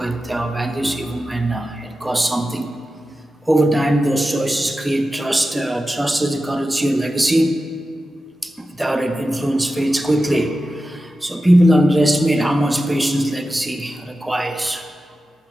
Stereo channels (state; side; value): normal; both; correlation 0.93